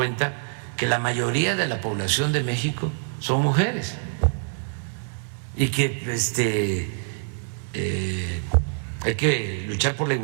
que la mayoría de la población de México son mujeres y que hay que luchar por la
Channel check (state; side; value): silent; left; digital silence